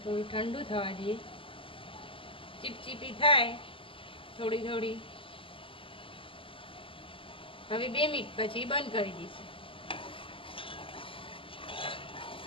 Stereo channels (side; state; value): right; late; 0.25 ms